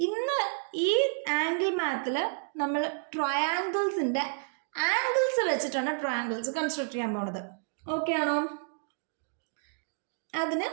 ഇന്ന് ഈ ആംഗിൾ മാത്തിൽ നമ്മൾ ട്രയാങ്കിൾസിൻ്റെ ആംഗിൾസ് വെച്ചിട്ടാണ് ട്രയാങ്കിൾസ് കൺസ്ട്രക്ട് ചെയ്യാൻ പോകുന്നത്. ഓക്കെ ആണോ. അതിന്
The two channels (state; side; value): silent; left; digital silence